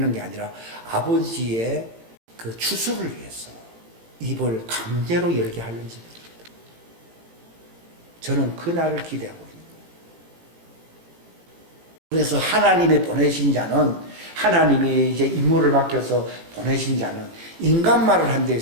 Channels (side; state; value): left; late; 18 ms